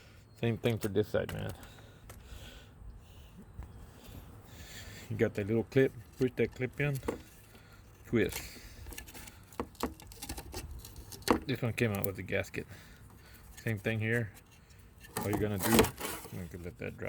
Same thing for this side, man. You got that little clip. Push that clip in. Twist. This one came out with the gasket. Same thing here. All you're gonna do, I'm gonna let that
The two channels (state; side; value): identical; both; correlation 1.00